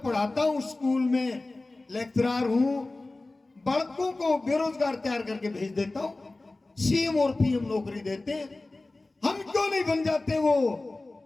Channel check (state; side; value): quieter; right; 3.1 dB